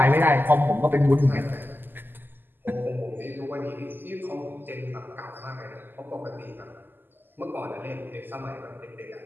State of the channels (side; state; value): left; late; 0.093 ms